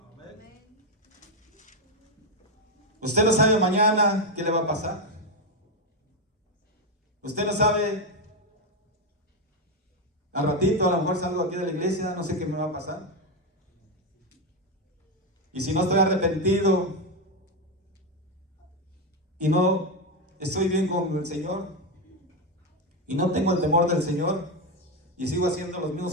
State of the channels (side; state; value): both; normal; correlation 0.08